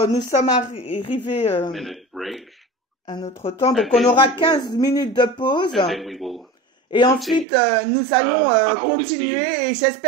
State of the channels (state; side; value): drops out; left; at 7.5 s